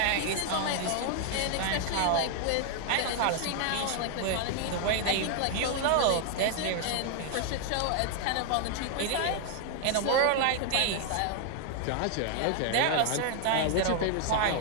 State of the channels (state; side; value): different; both; correlation 0.00